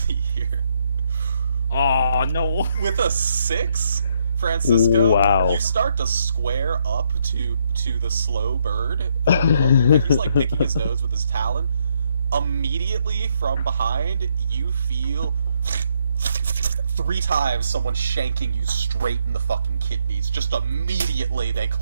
here. Oh no! With a 6, Francisco, wow. You start to square up to the slow bird, and he's like picking his nose with his talon. Immediately from behind, you feel 3 times someone shanking you straight in the fucking kidneys. Just immediately they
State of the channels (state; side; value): inverted; both; correlation -0.74